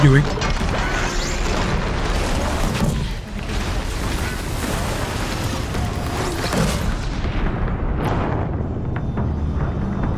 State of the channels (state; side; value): identical; both; correlation 1.00